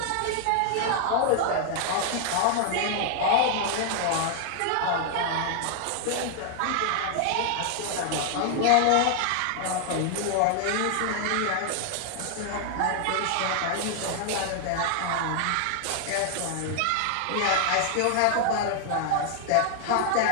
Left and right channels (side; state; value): both; different; correlation 0.00